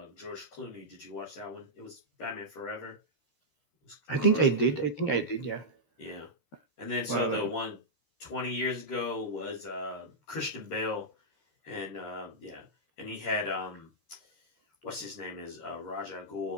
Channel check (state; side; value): late; right; 13 ms